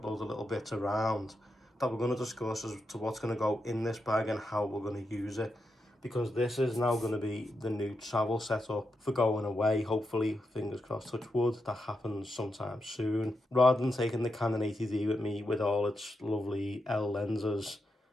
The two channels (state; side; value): normal; both; correlation 0.85